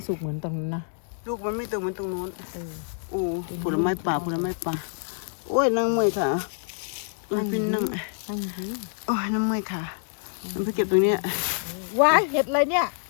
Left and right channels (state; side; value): silent; right; digital silence